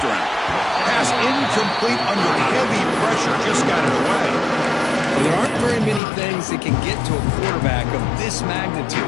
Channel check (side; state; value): right; drops out; at 6.0 s